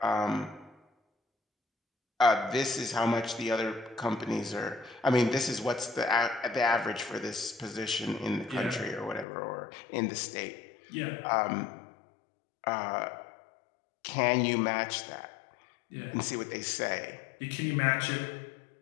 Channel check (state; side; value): drops out; right; at 9.2 s